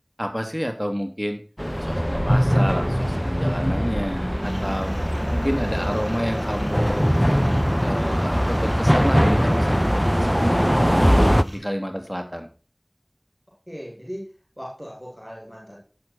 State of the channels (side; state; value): both; identical; correlation 1.00